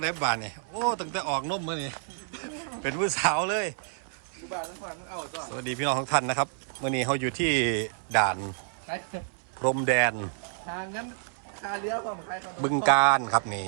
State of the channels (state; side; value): silent; left; 59 dB below the other